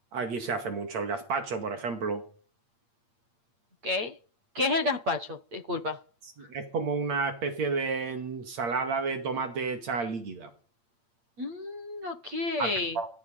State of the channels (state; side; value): late; left; 8.6 ms